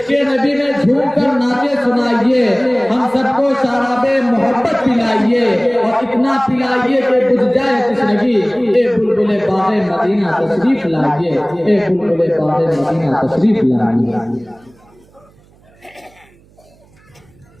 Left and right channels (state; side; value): noise; right; hum, 30 dB below the sound